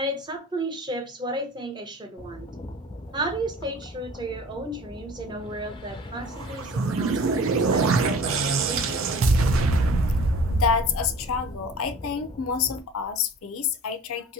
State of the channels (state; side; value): normal; both; correlation 0.43